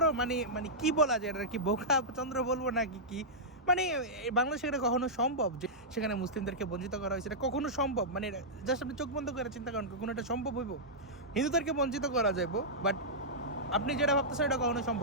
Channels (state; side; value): normal; both; correlation -0.11